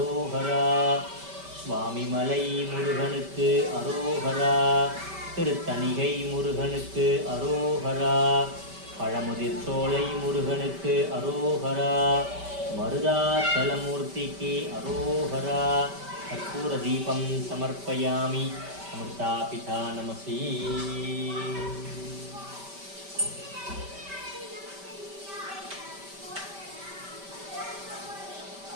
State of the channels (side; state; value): left; late; 5.1 ms